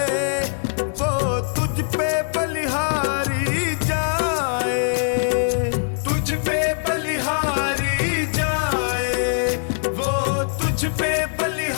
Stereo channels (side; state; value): right; silent; digital silence